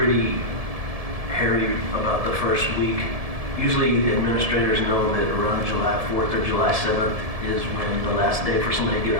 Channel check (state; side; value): late; left; 1.7 ms